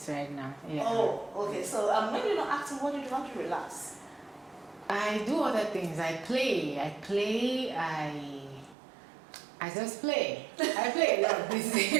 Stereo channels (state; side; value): drops out; left; at 8.8 s